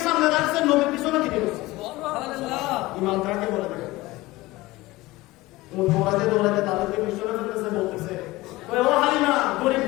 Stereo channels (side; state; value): right; quieter; 19.3 dB